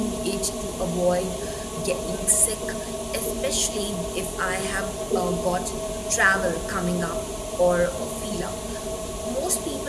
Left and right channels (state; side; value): identical; both; correlation 1.00